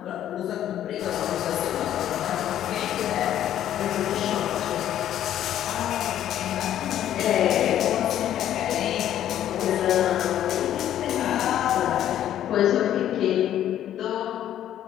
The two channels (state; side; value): quieter; right; 11.4 dB